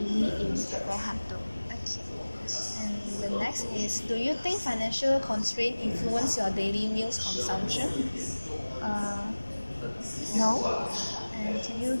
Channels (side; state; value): both; inverted; correlation -1.00